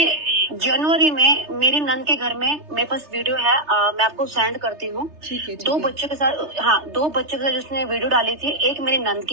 जनवरी में मेरी नंद के घर में मेरे पास वीडियो है, मैं आपको सेंड करती हूँ। 2 बच्चों के साथ, हाँ 2 बच्चों के साथ जिसने वीडियो डाली थी। एक मेरी नंद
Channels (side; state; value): left; late; 3.3 ms